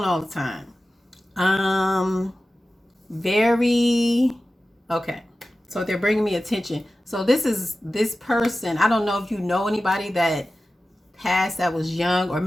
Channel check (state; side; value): normal; both; correlation 0.95